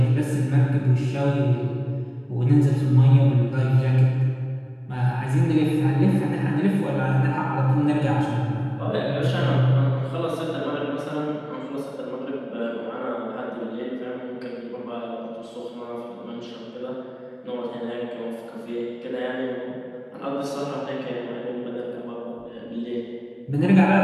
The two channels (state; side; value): identical; both; correlation 1.00